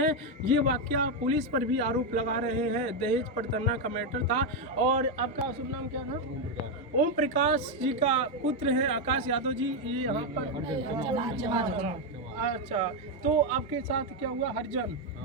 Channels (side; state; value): both; normal; correlation 0.05